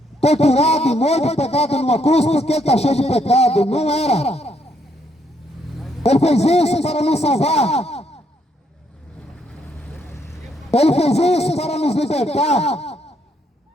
torturado, morto, pegado numa cruz porque ele está cheio de pecado. Não era. Ele fez isso para nos salvar. Ele fez isso para nos libertar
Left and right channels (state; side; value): normal; both; correlation 0.73